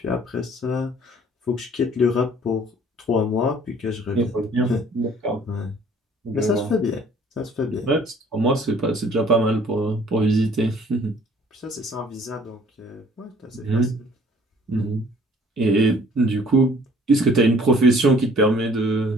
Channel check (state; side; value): normal; both; correlation 0.56